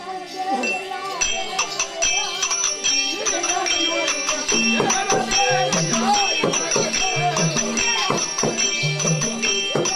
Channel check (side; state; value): both; identical; correlation 1.00